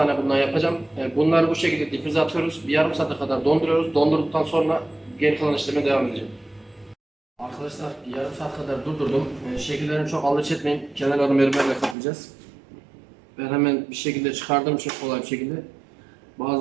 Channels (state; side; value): drops out; left; at 12.0 s